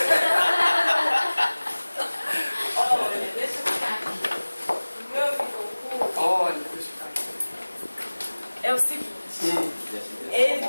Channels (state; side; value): inverted; both; correlation -1.00